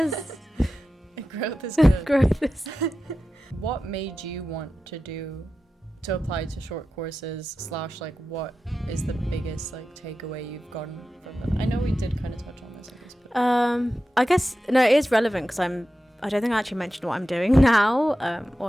Growth is good. Growth is. What made you want to do to apply to short courses / like what is the biggest like takeaway you've gotten from them? I know we did kind of touch on this, I guess, but I guess no, it is relevant because I don't think I actually mentioned what I'm doing now,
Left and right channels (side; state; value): both; normal; correlation 0.92